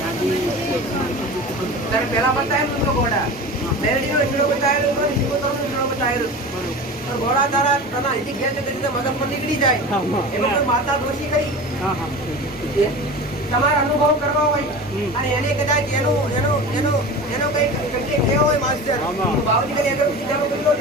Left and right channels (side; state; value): both; normal; correlation 0.33